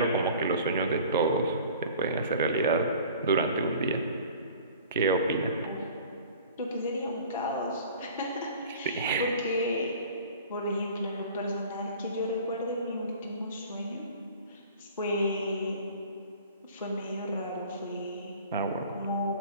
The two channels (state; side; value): inverted; both; correlation -0.45